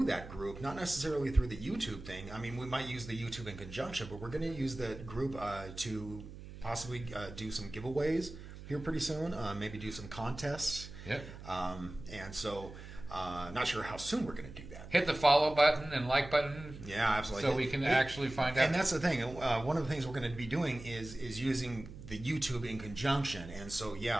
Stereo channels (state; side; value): noise; right; hum, 13 dB below the sound